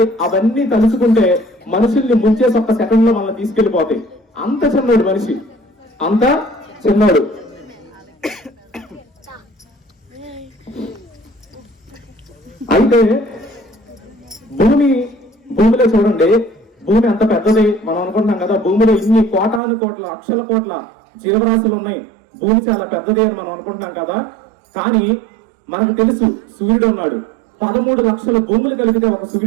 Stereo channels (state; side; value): drops out; left; at 19.6 s